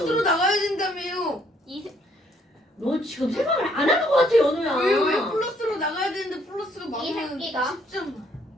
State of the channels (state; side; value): normal; both; correlation 0.67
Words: 나가야 된다며요. 너 지금 생각을 안 하는 것 같아 연우야. 왜 플러스로 나가야 되는데 플러스가 이 많으면 새끼가 10점.